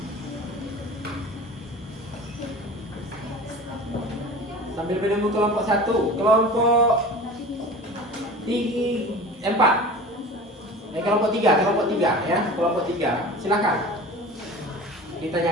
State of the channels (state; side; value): normal; both; correlation 0.37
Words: Sambil menunggu kelompok 1, kelompok 4. Kelompok 3 ya, kelompok 3. Silakan